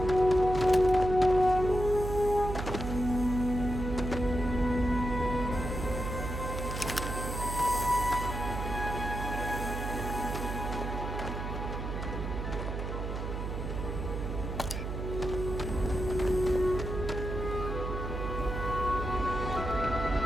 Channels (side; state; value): right; noise; hum, 4 dB below the sound